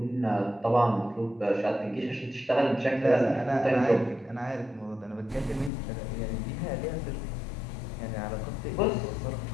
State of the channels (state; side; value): drops out; right; at 5.7 s